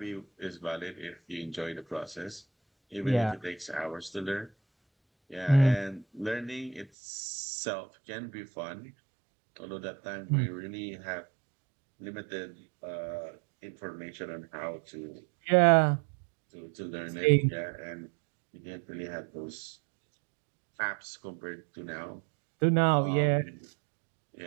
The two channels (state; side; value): drops out; left; at 6.9 s